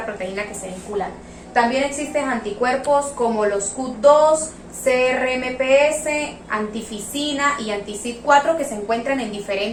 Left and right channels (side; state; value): both; identical; correlation 1.00